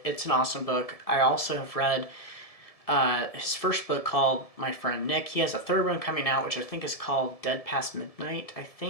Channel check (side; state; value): right; late; 1.7 ms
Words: It's an awesome book. I also have read his first book called My Friend Nick. He has a third one coming out, which I think is called Dead Past Midnight, I